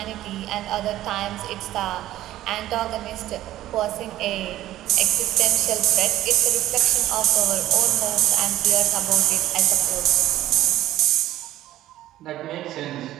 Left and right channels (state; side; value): quieter; left; 14.2 dB